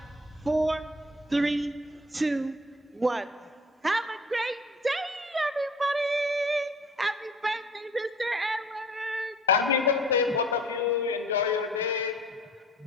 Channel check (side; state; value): both; normal; correlation 0.49